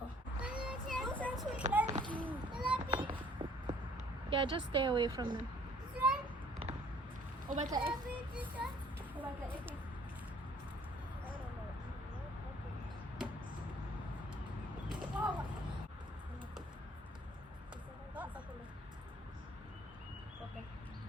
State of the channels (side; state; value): both; normal; correlation 0.57